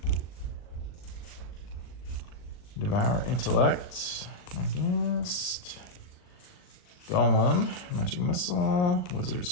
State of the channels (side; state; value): right; late; 39 ms